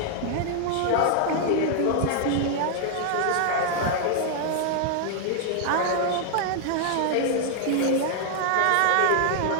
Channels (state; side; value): different; both; correlation 0.00